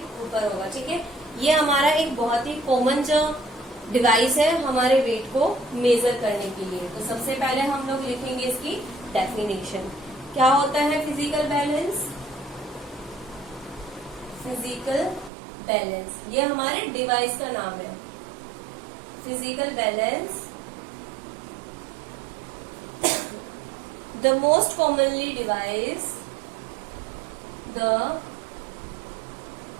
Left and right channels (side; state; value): left; drops out; at 15.3 s